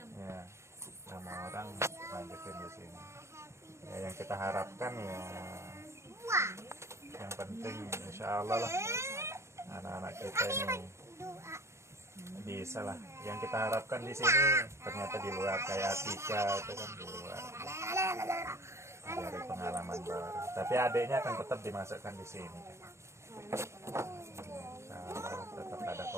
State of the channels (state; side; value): late; left; 0.13 ms